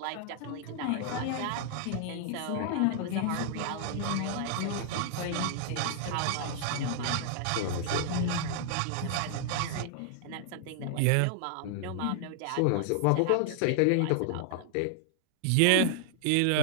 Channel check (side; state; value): both; different; correlation -0.01